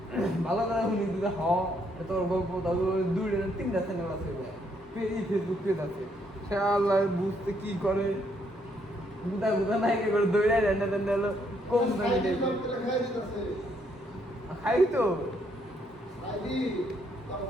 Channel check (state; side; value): normal; both; correlation 0.72